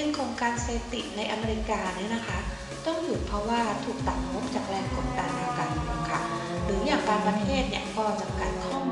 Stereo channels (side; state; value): both; identical; correlation 1.00